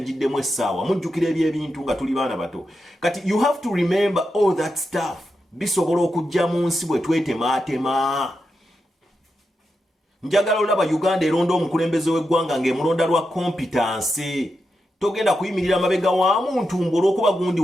essaawa mujjukira ebyebintu nga tuli baana bato kati you have to remember all that stuff bisobola okujja mu nsi bwe twetemaatema njagala olaba Uganda eronda omukulembeze w'eggwanga ng'emulonda lwa competence togenda kuyimirira mabega wa muntu olw'okuba gundi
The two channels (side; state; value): both; normal; correlation 0.87